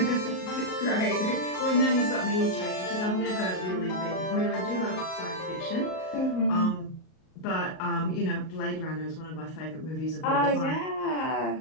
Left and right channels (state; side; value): late; right; 38 ms